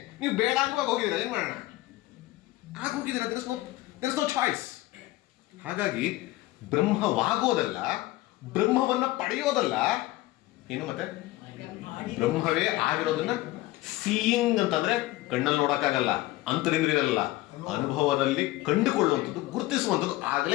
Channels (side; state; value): right; quieter; 18.0 dB